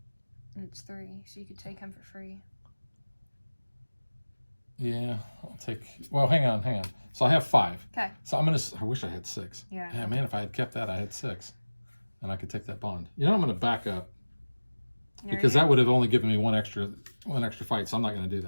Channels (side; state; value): both; inverted; correlation -1.00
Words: And it's 3, so you could take him for free. Yeah, I'll take. Well, hang on. So I have 5. Okay. So I wish I had 6. Yeah. Yeah, man, if I had kept that, I had 6, and I could take that bond. You know, I'm going to back up because that would have only given me one extra fight. So I'm not going to do